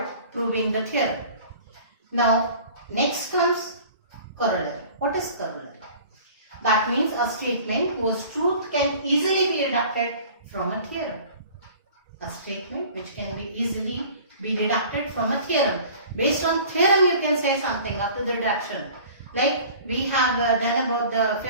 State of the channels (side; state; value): both; inverted; correlation -0.46